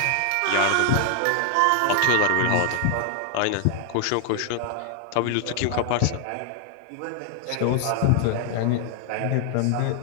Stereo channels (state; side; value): different; both; correlation 0.00